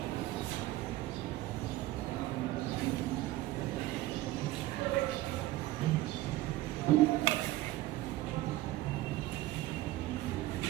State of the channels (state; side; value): quieter; left; 16.8 dB